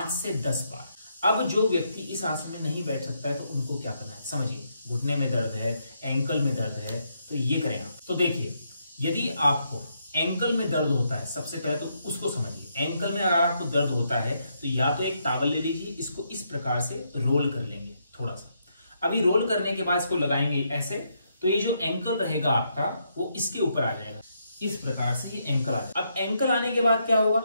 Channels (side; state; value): both; inverted; correlation -0.78